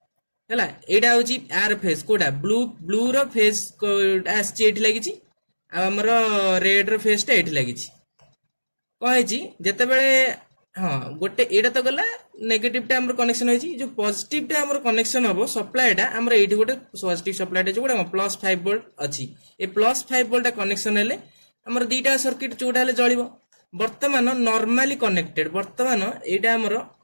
हला एटा होची आर फेज कोडा ब्लू रो फेज आछि एठी लागिछि आ हमर रेड रो फेज टा एठी लागिछि कहैछि जते बेले हां गोटे एटा तो गला नेगेटिव टा हमर कनेक्शन होइछि जो पॉजिटिव टा हमर कनेक्शन हबो सप्लाई टा हमर एठी गोटे पॉजिटिव सप्लाई टा जोडा +5 वोल्ट अछि ए +5 वोल्ट कनेक्शन हेले हमर दीटा सर्किट जोडा हेले जळिबो वर्तमान नॉर्मली कनेक्टेड वर्तमान एटा हमर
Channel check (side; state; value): both; inverted; correlation -1.00